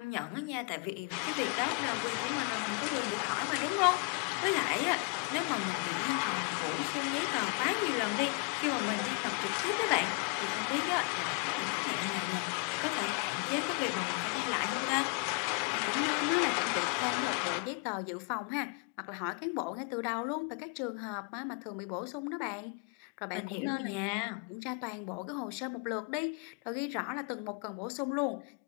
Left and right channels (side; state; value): right; quieter; 32.7 dB